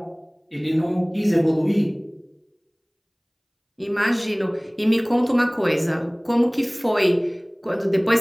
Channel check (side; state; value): both; identical; correlation 1.00